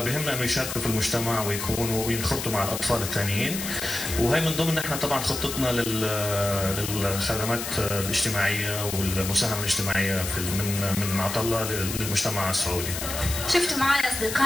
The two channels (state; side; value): noise; left; hiss, 6 dB below the sound